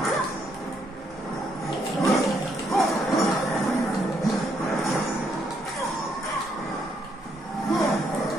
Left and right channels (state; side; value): normal; both; correlation 0.74